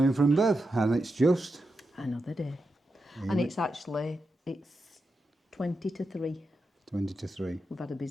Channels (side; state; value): both; normal; correlation 0.88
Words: from Bev. And it's just Another day. And it's 20 to 3. 20 to 3. We've had a